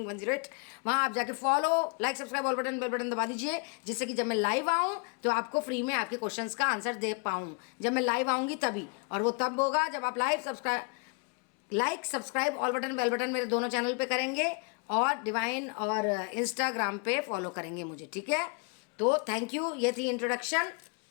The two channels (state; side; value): quieter; right; 34.1 dB